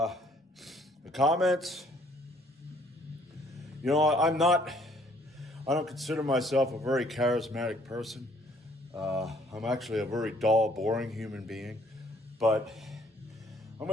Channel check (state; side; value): normal; both; correlation 0.62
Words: comments. You know, I don't consider myself a very charismatic person. I'm actually a very dull, boring human being, but I'm